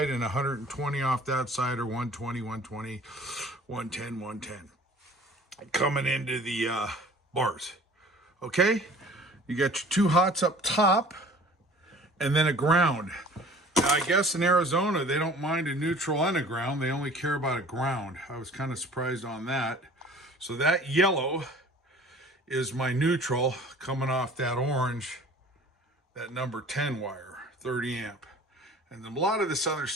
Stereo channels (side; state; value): both; normal; correlation 0.47